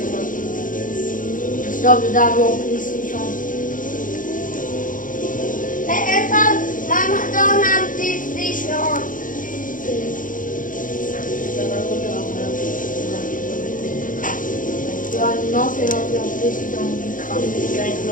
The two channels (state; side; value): late; right; 0.39 ms